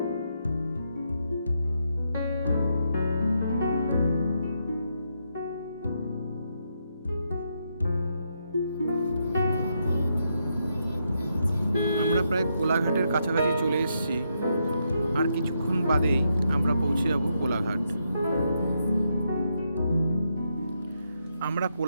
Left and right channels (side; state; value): both; inverted; correlation -0.80